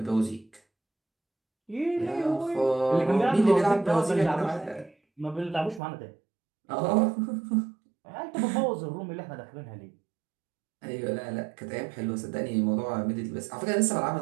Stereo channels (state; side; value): drops out; left; at 5.8 s